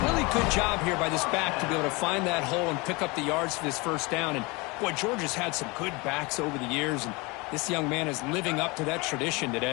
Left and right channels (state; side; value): quieter; right; 26.3 dB